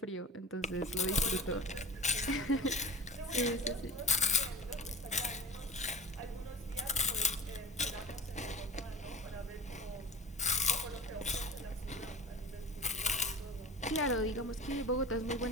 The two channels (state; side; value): normal; both; correlation 0.37